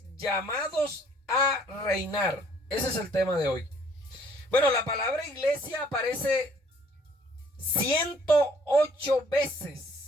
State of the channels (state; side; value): normal; both; correlation 0.60